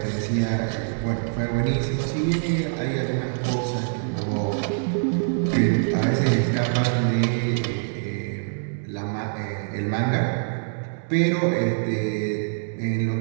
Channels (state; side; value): silent; left; digital silence